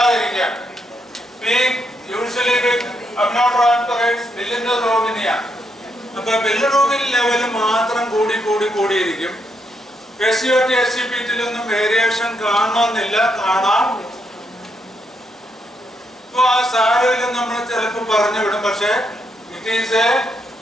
Being usually with aminotransferase bilirubin. അപ്പോൾ bilirubin level മാത്രം കൂടിയിരിക്കും. SGOT SGPT-ലൊന്നും variation കാണണമെന്നില്ല, കാണാം. അപ്പോൾ ആ സാരയിൽ നമ്മൾ ചിലപ്പോൾ പറഞ്ഞു വിടും, പക്ഷേ it is a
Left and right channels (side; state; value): both; normal; correlation 0.78